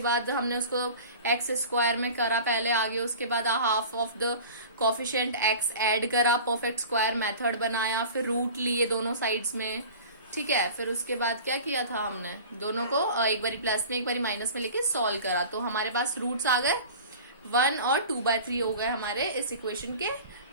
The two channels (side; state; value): both; inverted; correlation -0.39